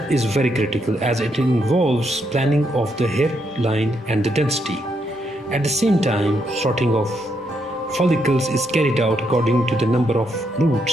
is very critical as it involves planning of the hairline and the density. At the same time, sorting of follicles is carried out according to the number of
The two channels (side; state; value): both; normal; correlation 0.78